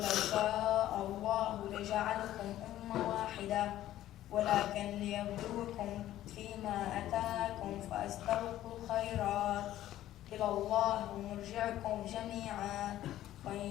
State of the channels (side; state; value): right; quieter; 13.5 dB